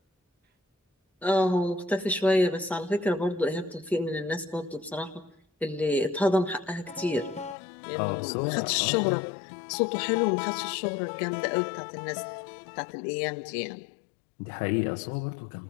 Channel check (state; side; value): drops out; right; at 7.6 s